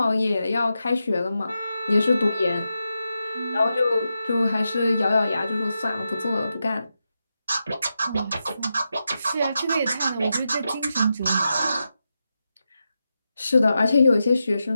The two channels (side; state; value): both; inverted; correlation -0.88